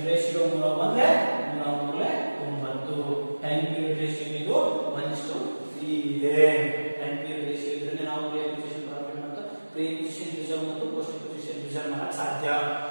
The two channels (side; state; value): both; inverted; correlation -1.00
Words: ರೇಷಿಯೋ 3 ಬಂದ್ರೆ 9. ಟೈಮ್ ಪೀರಿಯಡ್ ರೇಷಿಯೋ ಇದು 1:3 ಇದೆ. ಟೈಮ್ ಪೀರಿಯಡ್ ರೇಷಿಯೋ ಇದ್ರೆ ನಾವು ಪ್ರೀ ಅಕ್ವಿಸಿಷನ್ ಪ್ರಾಫಿಟ್ ಮತ್ತು ಪ್ರೀ ಅಕ್ವಿಸಿಷನ್ ರಿಸರ್ವ್ ಮತ್ತು ಪೋಸ್ಟ್ ಅಕ್ವಿಸಿಷನ್ ರಿಸರ್ವ್ ಮಾಡಕ್ಕೆ ಸಾಧ್ಯ.